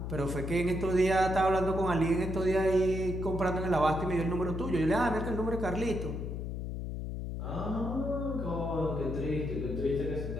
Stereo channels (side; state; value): left; noise; hum, 4 dB below the sound